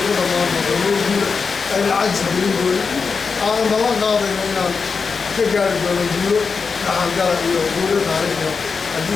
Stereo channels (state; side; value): quieter; right; 5.1 dB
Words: ku dhammaan doonto ay lacag gelin doona aan ballan qaadayno inaan ka gaari doono guulo dhaxalgala iyo guulo taariikhi haddii